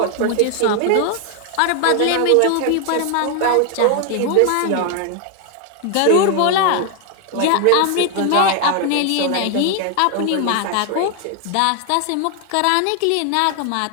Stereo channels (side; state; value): both; different; correlation 0.01